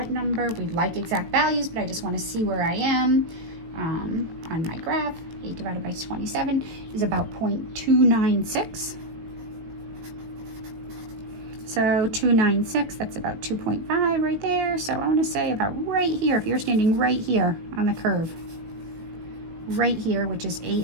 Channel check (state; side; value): late; left; 18 ms